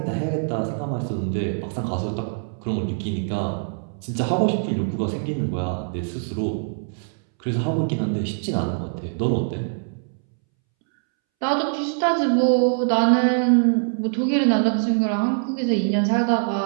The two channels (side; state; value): left; silent; 63 dB below the other